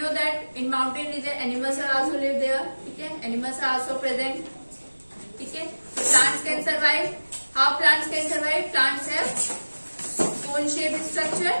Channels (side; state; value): both; inverted; correlation -1.00